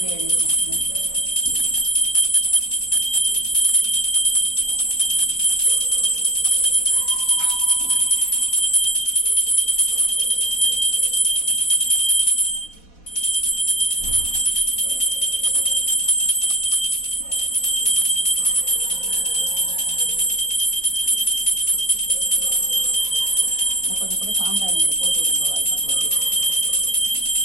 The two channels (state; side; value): late; right; 4.1 ms